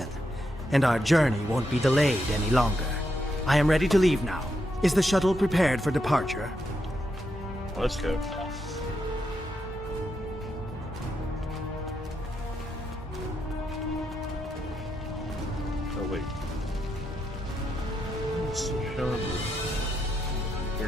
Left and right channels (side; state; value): both; normal; correlation 0.82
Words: and our journey won't be delayed any longer. I am ready to leave now. Is the shuttle prepared for departure? Let's go. Oh, wait. Let's show him.